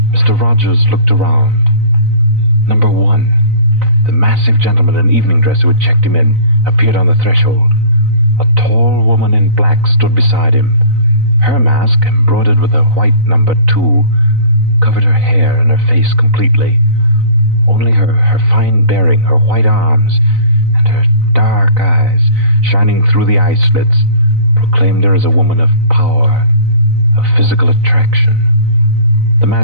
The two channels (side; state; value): left; late; 4.0 ms